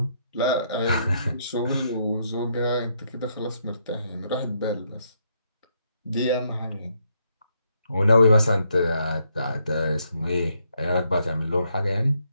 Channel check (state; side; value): inverted; both; correlation -0.75